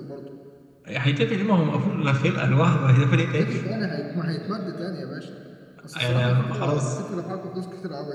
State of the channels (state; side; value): identical; both; correlation 1.00